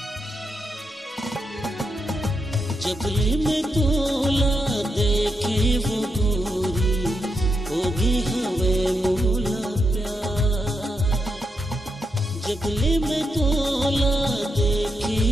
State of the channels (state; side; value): normal; both; correlation 0.83